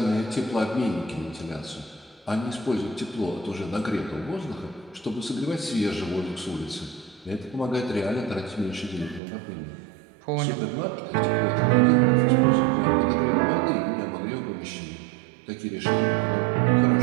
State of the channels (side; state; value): left; drops out; at 9.2 s